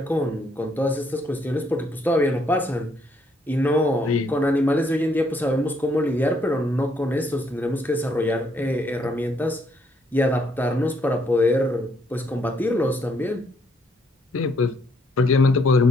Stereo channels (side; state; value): both; normal; correlation 0.70